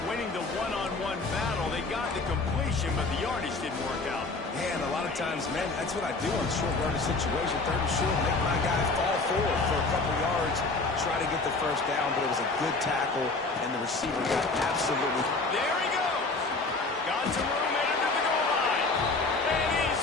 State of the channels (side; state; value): right; quieter; 3.6 dB